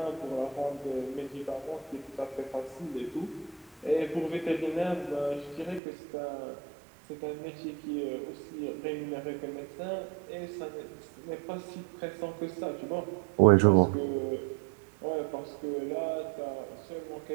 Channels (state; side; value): drops out; left; at 5.8 s